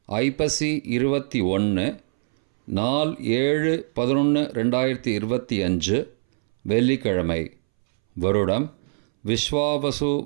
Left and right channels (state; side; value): silent; left; 63 dB below the other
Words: ஐப்பசி 21 நாள் 7/11/2025 வெள்ளிக்கிழமை. வருடம் விஸ்வாவசு